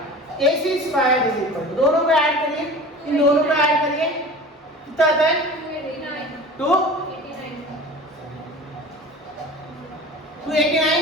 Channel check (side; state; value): both; normal; correlation 0.38